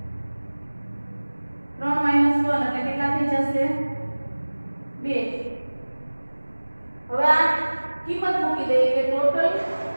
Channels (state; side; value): inverted; both; correlation -1.00